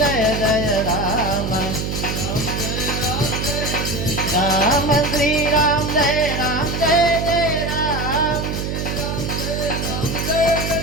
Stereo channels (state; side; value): noise; right; hum, 3 dB below the sound